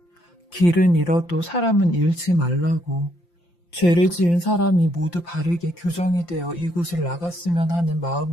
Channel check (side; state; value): right; late; 5.8 ms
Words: 길은 잃어도 사람은 잃지 말라고. 죄를 지은 사람이 모두 바르게 교정이 되어 이곳을 나갔으면 하는